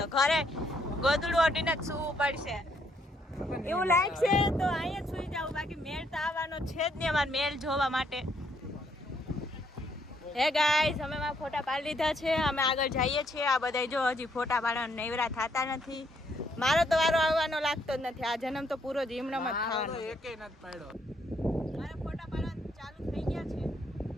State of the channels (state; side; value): normal; both; correlation 0.71